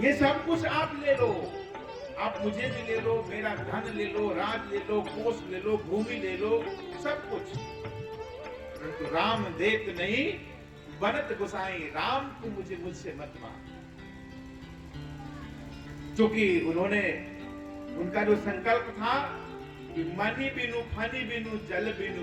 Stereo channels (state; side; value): identical; both; correlation 1.00